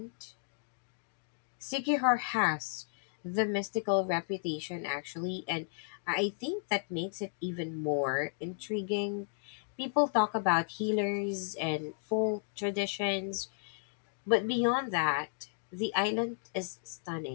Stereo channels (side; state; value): right; silent; digital silence